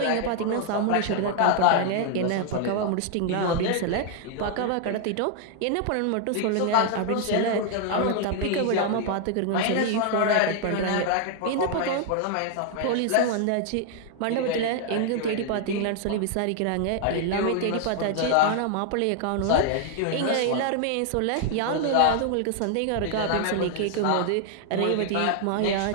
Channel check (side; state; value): both; different; correlation 0.00